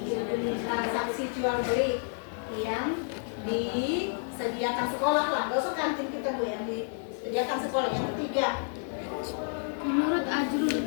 Transaksi jual beli yang disediakan sekolah lah, gak usah kantin kita Bu, yang disediakan sekolah. Yang ketiga Menurut Ajrul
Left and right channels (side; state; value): right; silent; 58 dB below the other